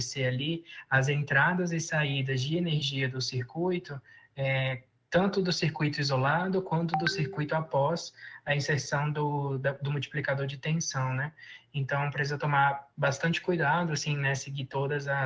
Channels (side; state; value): both; identical; correlation 1.00